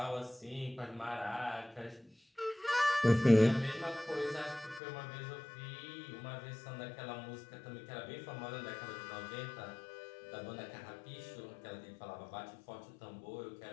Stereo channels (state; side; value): drops out; right; at 4.8 s